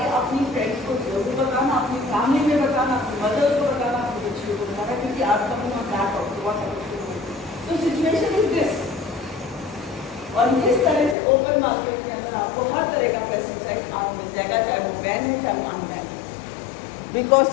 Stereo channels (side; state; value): right; drops out; at 11.2 s